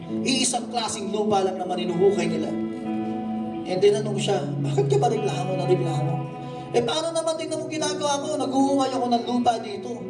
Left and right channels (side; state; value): both; identical; correlation 1.00